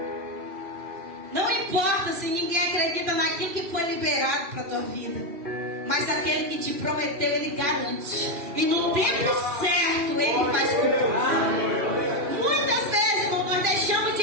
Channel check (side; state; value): left; late; 3.0 ms